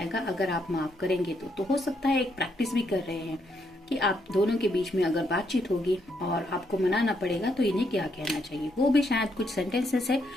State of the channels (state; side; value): normal; both; correlation 0.76